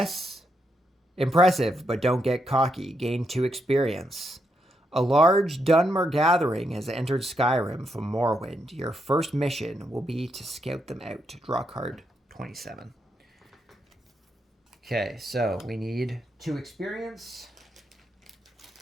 Impressive, but don't get cocky. Gain 2 experience. A large Dunmer gathering has entered Skyrim from Morrowind. Your first mission will be to scout them out. Draw card 27. Okay, so we need 2 experience.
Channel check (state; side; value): normal; both; correlation 0.80